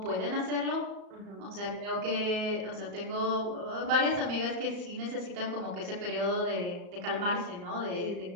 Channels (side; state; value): left; late; 34 ms